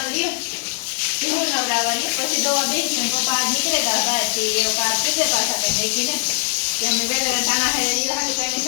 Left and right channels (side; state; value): right; silent; digital silence